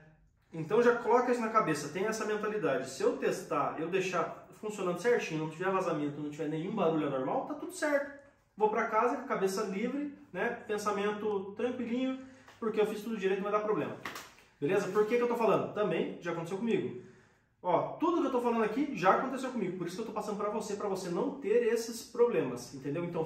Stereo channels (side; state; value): both; identical; correlation 1.00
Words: Então já coloca isso na cabeça, tem essa mentalidade. Se eu testar, eu deixar funcionando certinho, não tiver vazamento, não tiver nenhum barulho anormal, tá tudo certo. Vou para casa com a cabeça livre, né? Pensamento tranquilinho, porque eu fiz tudo direito, não vai dar problema. Beleza? Por que eu tô falando? Também já aconteceu comigo. Ó, tudo que eu tô falando aqui já aconteceu comigo, por isso que eu tô passando para você não ter esses problemas, entendeu? Então